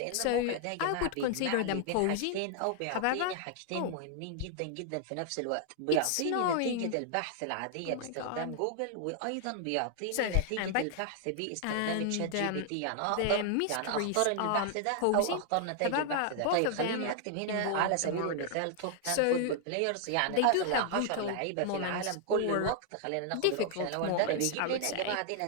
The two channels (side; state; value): both; different; correlation 0.00